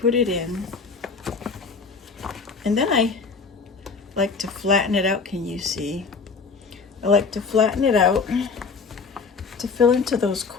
it in. And then I like to flatten it out. Can you see? I like to flatten it out to fill into those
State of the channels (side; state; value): right; quieter; 4.9 dB